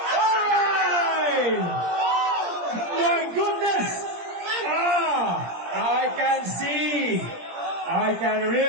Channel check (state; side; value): late; left; 17 ms